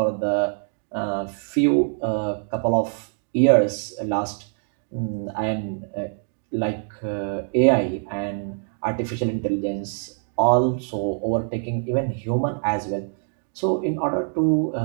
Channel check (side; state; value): left; silent; digital silence